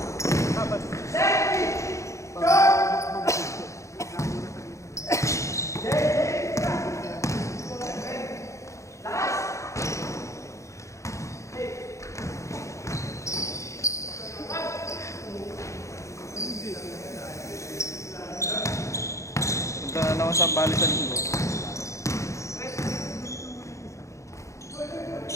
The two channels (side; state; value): right; late; 0.15 ms